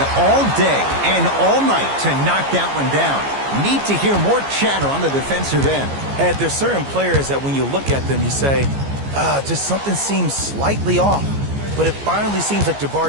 all day and all night to knock that one down. Need to hear more chatter on the defensive end. And there's certain players that when you look at them, you say, just something seems slightly off. But it finally seems like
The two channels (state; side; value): late; left; 15 ms